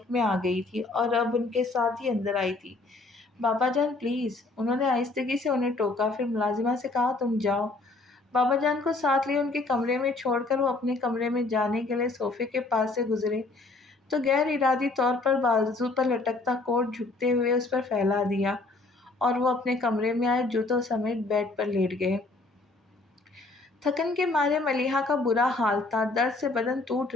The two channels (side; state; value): right; quieter; 3.3 dB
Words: میں آ گئی تھی اور اب ان کے ساتھ ہی اندر آئی تھی۔ بابا جان پلیز، انہوں نے آہستگی سے انہیں ٹوکا، پھر ملازمہ سے کہا، تم جاؤ۔ بابا جان کو ساتھ لیے ان کے کمرے میں چھوڑ کر وہ اپنے کمرے میں جانے کے لیے صوفے کے پاس سے گزرے تو غیر ارادی طور پر بازو پر لٹکتا کوٹ جھکتے ہوئے اس پر پھیلا دیا اور وہ اپنے کمرے میں آئے جوتوں سمیت بیڈ پر لیٹ گئے۔ تھکن کے مارے ملیحہ کا برا حال تھا، درد سے بدن ٹوٹ